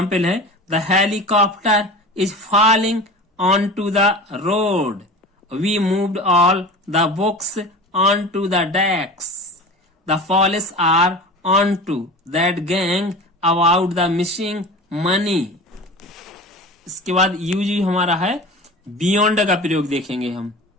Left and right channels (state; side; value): normal; both; correlation 0.34